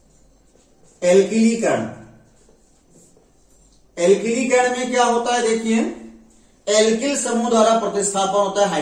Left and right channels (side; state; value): both; identical; correlation 1.00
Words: एल्किलीकरण। एल्किलीकरण में क्या होता है, देखिए एल्किल समूह द्वारा प्रतिस्थापन होता है